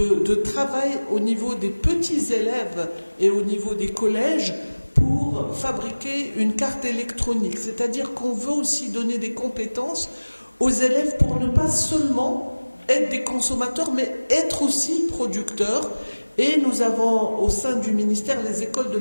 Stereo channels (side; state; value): both; inverted; correlation -1.00